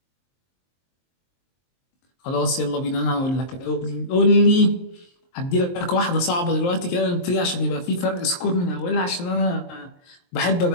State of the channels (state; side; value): late; right; 23 ms